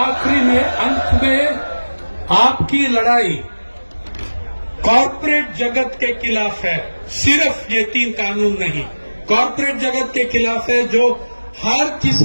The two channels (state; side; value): inverted; both; correlation -1.00